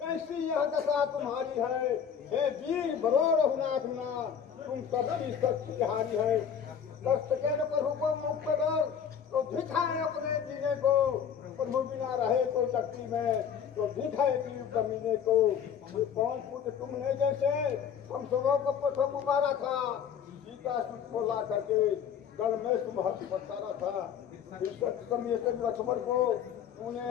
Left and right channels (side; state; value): right; quieter; 8.0 dB